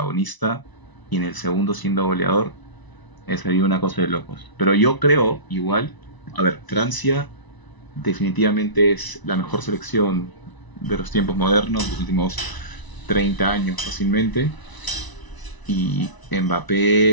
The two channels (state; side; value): late; right; 1.0 ms